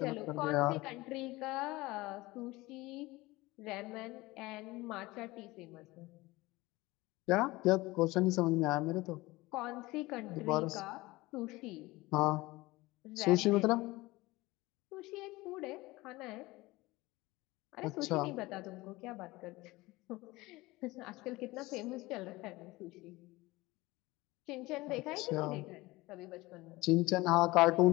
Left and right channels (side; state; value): right; quieter; 20.6 dB